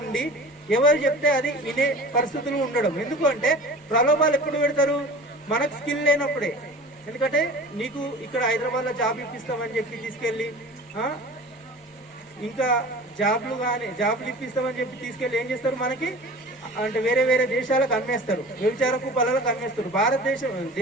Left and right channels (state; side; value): normal; both; correlation 0.39